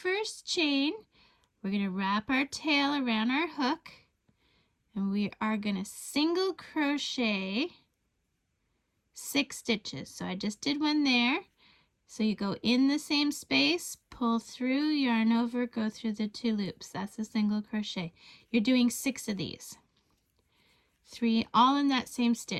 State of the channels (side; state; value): both; identical; correlation 1.00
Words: chain. We're going to wrap our tail around our hook and we are going to single crochet 6 stitches. So I just did one there. So you go in the same space, pull through, yarn over, go through the 2 loops. That's a single crochet. You're doing 6 of these. 3 all in that same